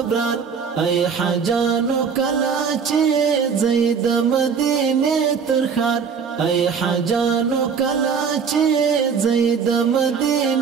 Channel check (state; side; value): quieter; left; 6.3 dB